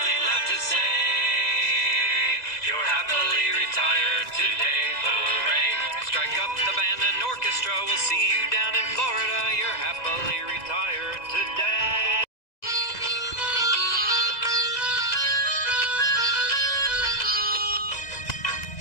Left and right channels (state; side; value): late; right; 2.0 ms